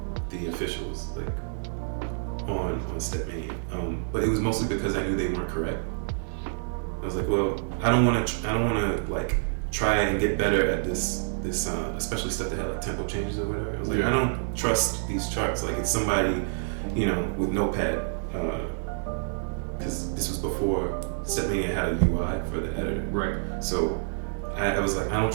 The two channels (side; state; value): left; silent; digital silence